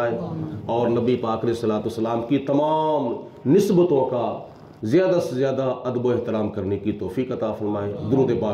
اور نبی پاک علیہ الصلوۃ والسلام کی تمام نسبتوں کا زیادہ سے زیادہ ادب و احترام کرنے کی توفیق عطا فرمائے۔ درود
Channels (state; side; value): identical; both; correlation 1.00